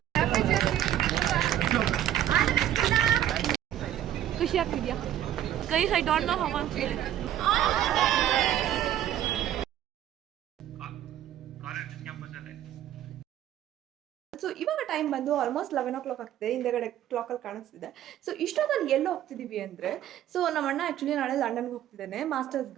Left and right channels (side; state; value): left; quieter; 11.8 dB